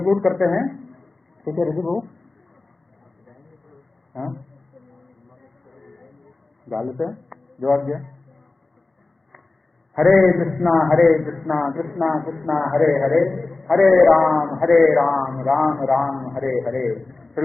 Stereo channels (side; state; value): right; quieter; 3.4 dB